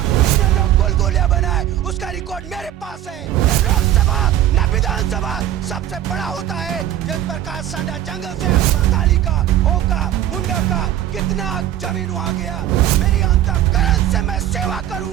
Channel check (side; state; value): left; quieter; 12.2 dB